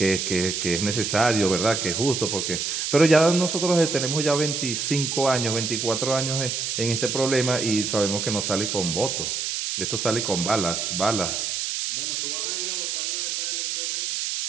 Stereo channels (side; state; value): right; noise; hiss, 2 dB below the sound